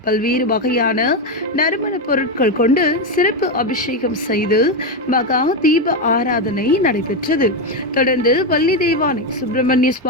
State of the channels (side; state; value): both; normal; correlation 0.09